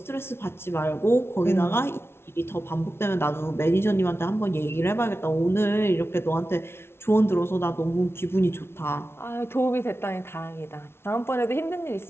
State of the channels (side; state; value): right; late; 0.12 ms